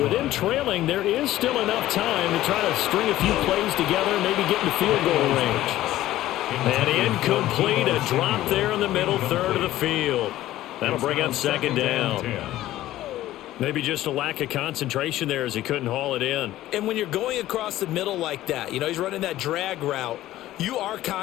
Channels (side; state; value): right; quieter; 14.7 dB